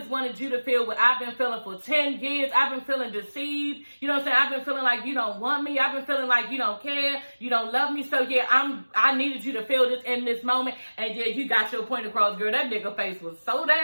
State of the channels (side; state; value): both; inverted; correlation -1.00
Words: wanted you to feel what I've been feeling for 10 years. I've been feeling deceived. You know what I'm saying? I've been feeling like you don't want me. I've been feeling like you don't care. You don't love me. So yeah, I needed you to feel this in this moment. And yeah, you got your point across, girl. That nigga face was so